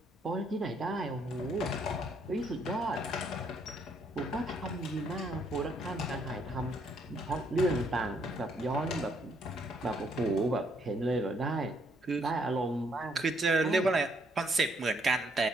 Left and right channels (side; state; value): both; normal; correlation 0.70